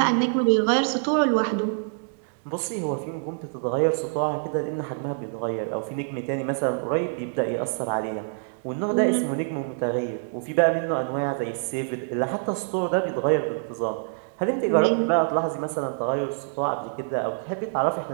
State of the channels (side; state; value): left; silent; digital silence